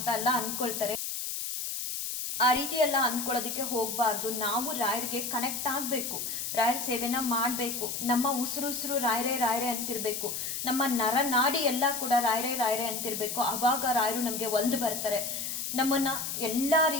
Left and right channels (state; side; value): noise; left; hiss, 4 dB below the sound